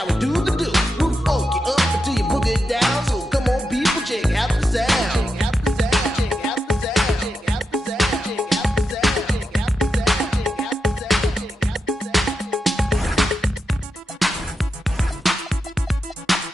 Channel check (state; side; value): normal; both; correlation 0.87